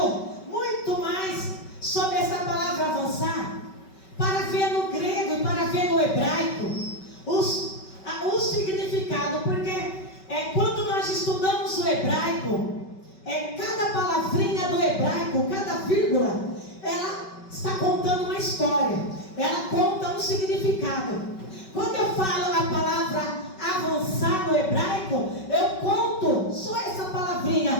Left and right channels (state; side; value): late; right; 5.3 ms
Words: muito mais sobre essa palavra avançar, para ver no grego e para ver no hebraico o significado, porque quando nós estudamos o hebraico, cada palavrinha do hebraico, cada vírgula, ela está contando uma história, ela conta um significado. Quando eu falo a palavra avançar no hebraico, eu conto só essa palavrinha,